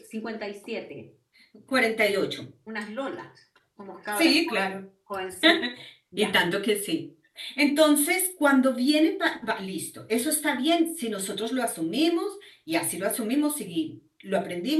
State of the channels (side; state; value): both; identical; correlation 1.00